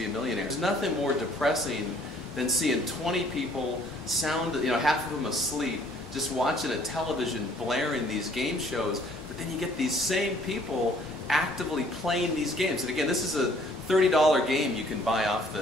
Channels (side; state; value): both; normal; correlation 0.59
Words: a Millionaire. There's nothing more depressing than seeing 20 people half of them asleep, just watching a television blaring these game shows, but then you get these same people actively playing these games. And again, this is a $30 game you can buy off